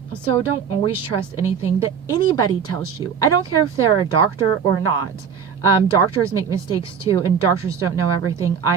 so don't always trust anything that anybody tells you. I don't care if they're a doctor or not. Doctors make mistakes too, and doctors don't know everything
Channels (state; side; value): quieter; left; 7.1 dB